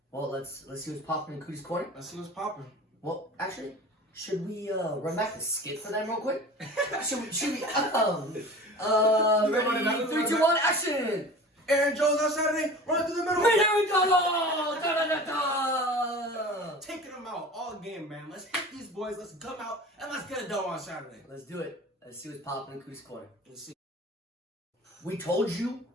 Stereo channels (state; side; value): normal; both; correlation 0.38